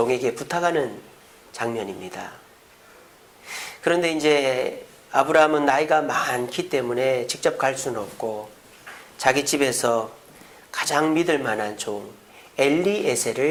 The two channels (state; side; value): identical; both; correlation 1.00